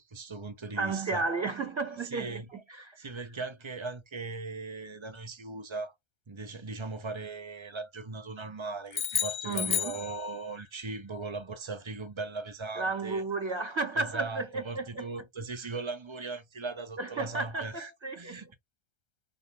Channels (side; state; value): left; late; 1.3 ms